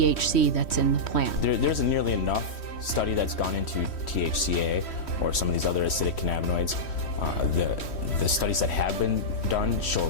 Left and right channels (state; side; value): late; right; 3.1 ms